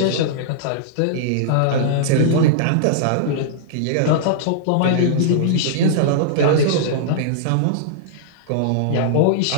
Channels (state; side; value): different; both; correlation -0.02